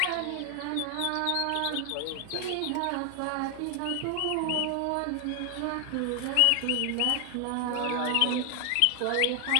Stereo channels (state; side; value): different; both; correlation 0.00